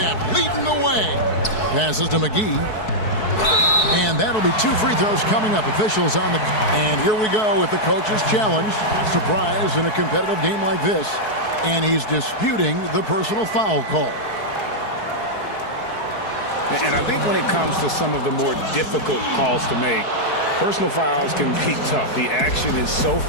leading the way. Passes to McGee. And that'll be 2 free throws coming up. Officials on the... And here we go with the coach's challenge. Surprise in a competitive game like this. And he's disputing the personal foul call. And I think when it comes to some of the more difficult calls to make, personal fouls can be tough. The action is so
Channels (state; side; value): late; right; 4.6 ms